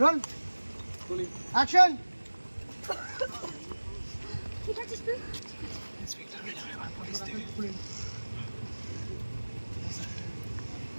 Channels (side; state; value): both; inverted; correlation -1.00